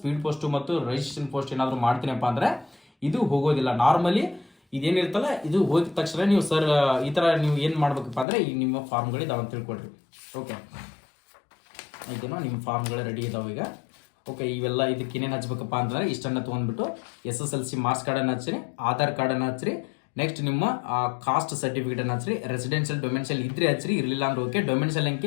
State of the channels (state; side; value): drops out; right; at 8.2 s